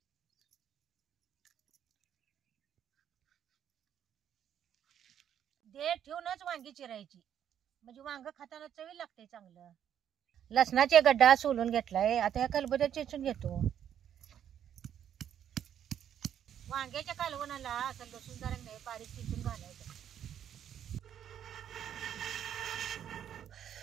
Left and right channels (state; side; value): quieter; left; 9.6 dB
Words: देठ ठेवूनच वांगी चिरायची म्हणजे वांग खाताना चवी लागते चांगलं. लसणाचे गड्डा सोलून घेतलाय. आता ह्या खलबत्यात चेचून घेतो. वांग्याच्या कालवणाला असं लसूण जरा नाही बारीक चिचून घालायचं.